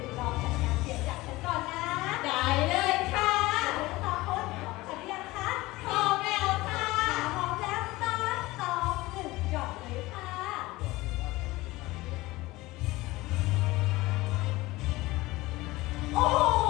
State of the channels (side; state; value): right; quieter; 19.8 dB